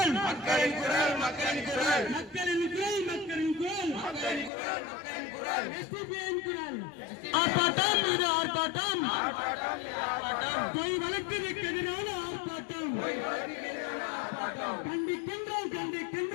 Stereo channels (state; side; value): drops out; right; at 4.5 s